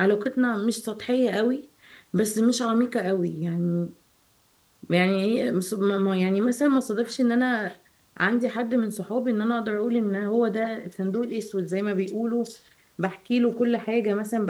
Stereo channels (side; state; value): both; identical; correlation 1.00